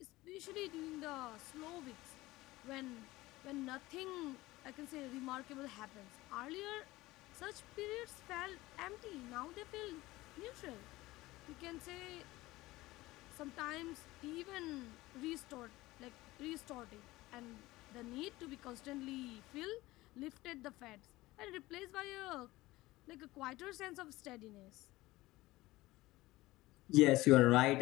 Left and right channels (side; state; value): right; quieter; 18.8 dB